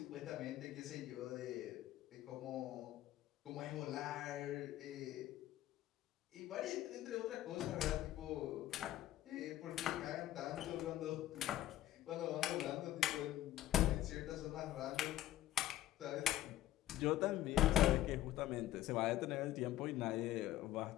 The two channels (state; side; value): quieter; right; 13.9 dB